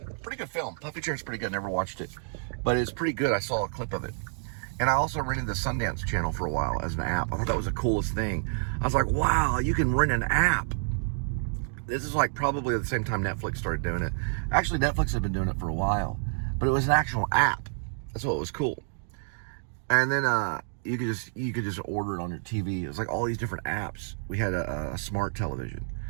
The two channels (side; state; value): left; silent; 59 dB below the other